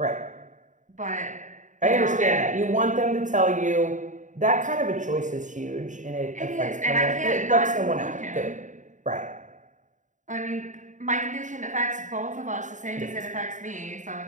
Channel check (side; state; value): left; late; 0.36 ms